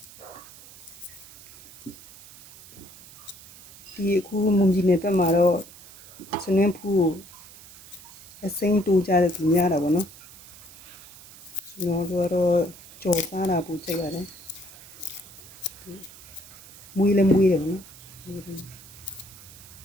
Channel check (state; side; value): noise; right; hiss, 19 dB below the sound